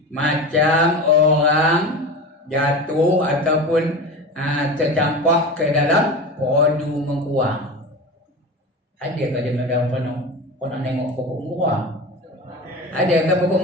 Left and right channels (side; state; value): both; normal; correlation 0.28